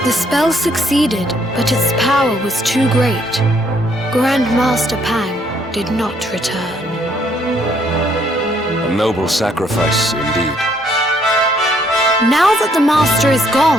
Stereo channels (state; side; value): normal; both; correlation 0.68